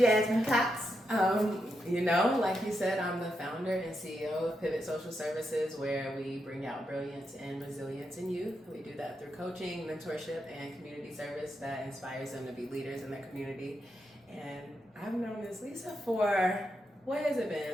Cox. Like you said, I'm the founder and CEO of Pivot Social Services, where we bring out brilliance and resilience in youth. We do that through coaching, mentorship, and community service that inspires them to be leaders in their community. And I've known Miss Lisa for, what has it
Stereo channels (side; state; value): both; normal; correlation 0.84